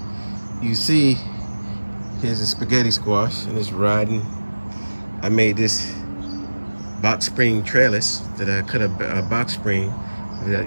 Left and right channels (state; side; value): inverted; both; correlation -1.00